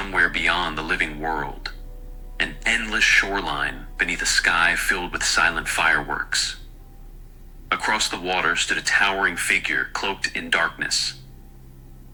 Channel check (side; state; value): both; identical; correlation 1.00